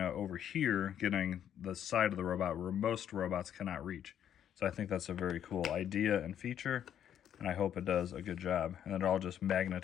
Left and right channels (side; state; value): right; quieter; 9.8 dB